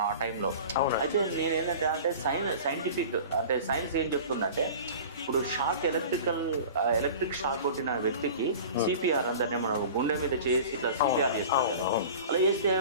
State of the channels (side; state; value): both; inverted; correlation -0.39